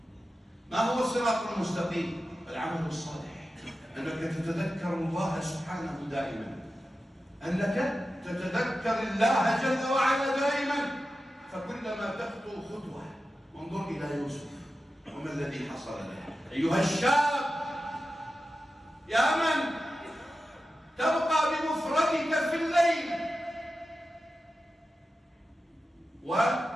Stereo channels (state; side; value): normal; both; correlation 0.93